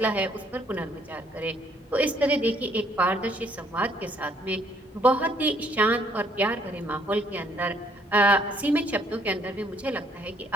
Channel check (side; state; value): both; normal; correlation 0.65